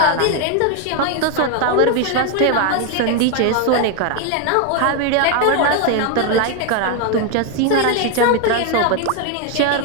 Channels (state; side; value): different; both; correlation 0.01